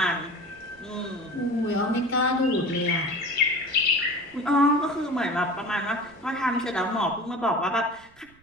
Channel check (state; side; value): noise; right; rumble, 29 dB below the sound